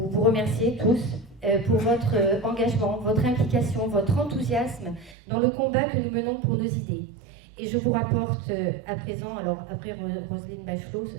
remercier tous pour votre engagement, votre implication, votre enthousiasme dans le combat que nous menons pour nos idées. Et je vous rapporte à présent, alors après Roselyne Bachelot,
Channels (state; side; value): drops out; left; at 5.2 s